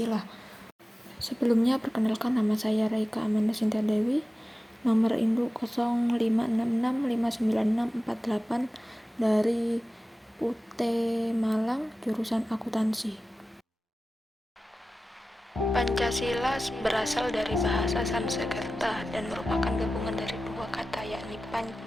Sebelumnya, perkenalkan, nama saya Raika Amanda Sinta Dewi, nomor induk 0566596648 dari UT Malang, jurusan akuntansi. Pancasila berasal dari bahasa Sanskerta dan merupakan gabungan dari dua kata, yakni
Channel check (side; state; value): both; normal; correlation 0.95